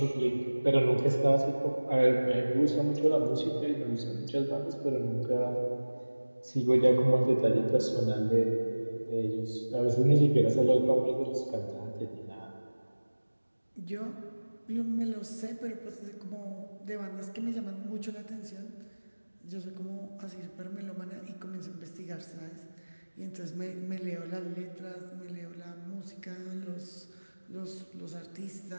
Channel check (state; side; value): inverted; both; correlation -1.00